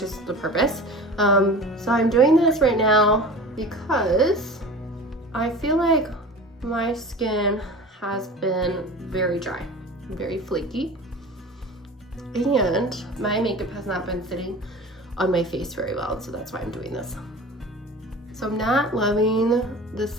is the purpose. So I'm doing this right now because I feel like my skin has been very dry, very flaky, and my makeup has not been sitting on my face very well, so that's why I'm doing this. So I'm not loving the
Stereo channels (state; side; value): normal; both; correlation 0.37